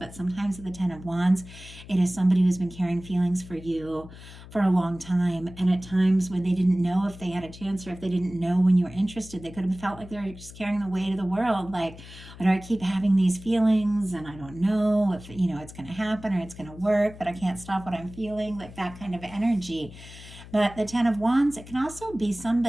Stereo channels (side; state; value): left; noise; hum, 17 dB below the sound